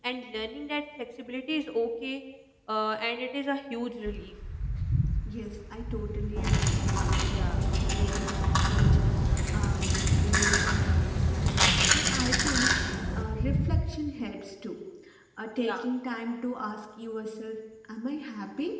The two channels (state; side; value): identical; both; correlation 1.00